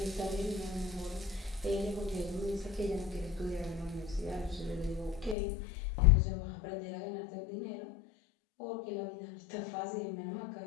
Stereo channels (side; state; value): right; drops out; at 5.4 s